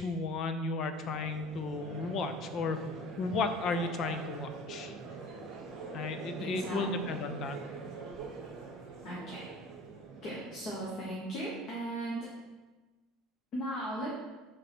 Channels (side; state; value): both; normal; correlation 0.44